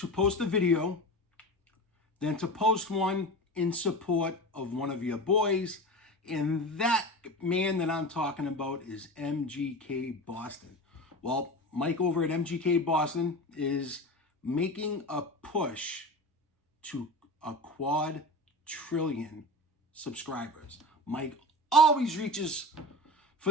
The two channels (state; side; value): normal; both; correlation 0.30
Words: post a video than to post one in support of one of your boys, and that man that I'm talking about is MGK Boston. Well, Mike over at MGK Boston is making a push to a quadrillion subscribers. Mike always reaches